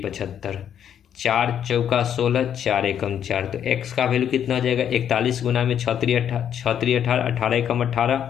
4 चौका 16, 4 एकम 4, तो x का वैल्यू कितना हो जाएगा? 41 गुना में 6 3 18, 18 एकम 18,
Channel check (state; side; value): quieter; right; 9.3 dB